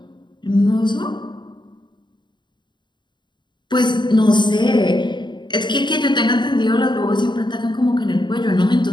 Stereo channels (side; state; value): right; late; 0.22 ms